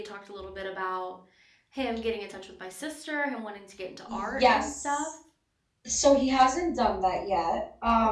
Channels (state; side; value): identical; both; correlation 1.00